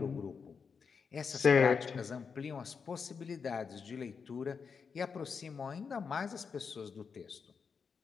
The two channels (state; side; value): quieter; right; 5.8 dB